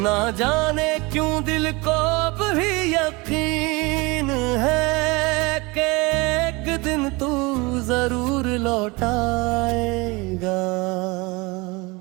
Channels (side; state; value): left; quieter; 25.3 dB